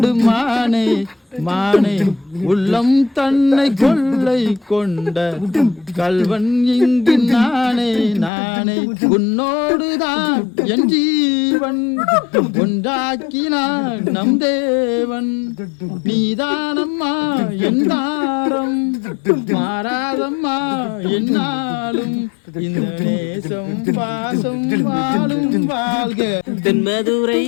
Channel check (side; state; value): right; drops out; at 8.3 s